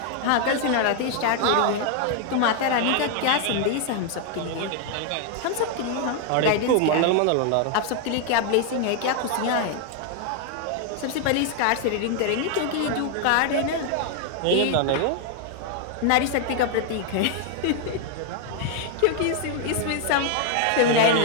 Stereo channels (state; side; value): different; both; correlation 0.00